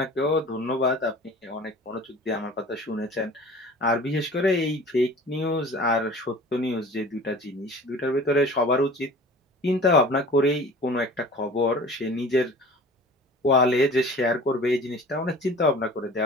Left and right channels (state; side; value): normal; both; correlation 0.43